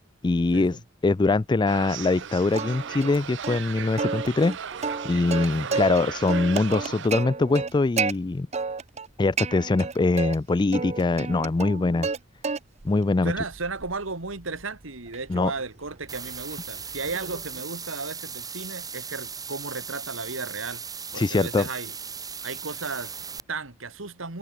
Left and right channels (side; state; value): both; normal; correlation 0.62